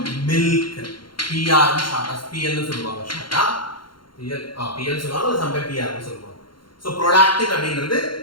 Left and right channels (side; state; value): right; late; 0.72 ms